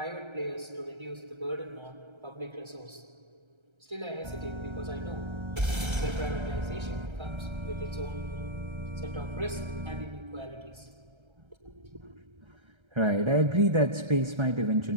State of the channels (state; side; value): late; left; 1.3 ms